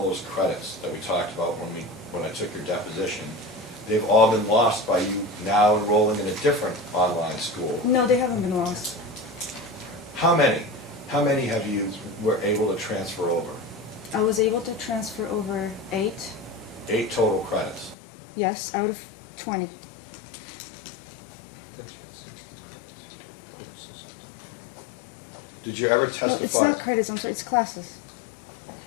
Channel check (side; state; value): right; drops out; at 17.9 s